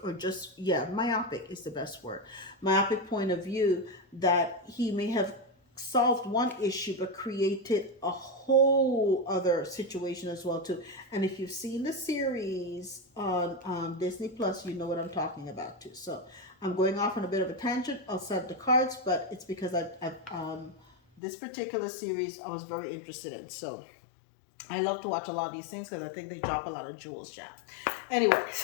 or just, yeah, myopic is the best word, myopic point of view, that he may have solved one issue but created a whole other situation as well too. And if you've seen the series on Disney Plus, you know what I'm talking about too. So I'm going off on a bit of a tangent. I'll set the cards, but it's because I this particular series I was very interested in. So I love to watch a lot of these things because I think they drop a lot of jewels, yeah.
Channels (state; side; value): drops out; right; at 21.2 s